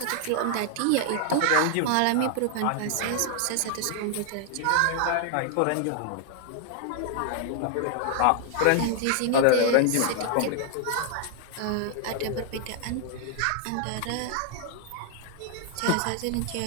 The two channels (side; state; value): both; different; correlation 0.00